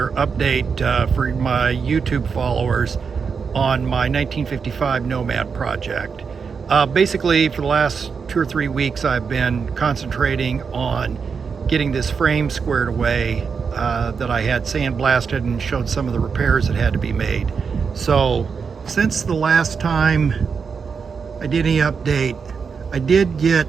update for my YouTube followers on my 1955 Nomad project. Basically, for the last 2 or 3 weeks, I've been concentrating on getting this frame squared away that I had sandblasted and showed some of the repairs that had to be made. So, since the last time I did any update, I did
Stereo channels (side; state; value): left; quieter; 5.8 dB